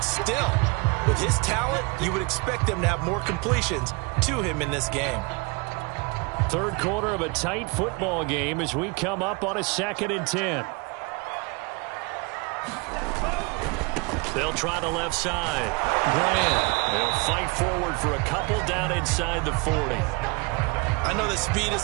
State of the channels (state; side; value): quieter; left; 28.8 dB